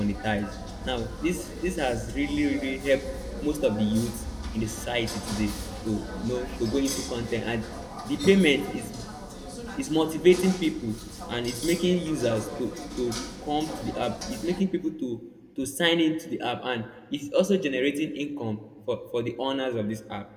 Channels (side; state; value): both; identical; correlation 1.00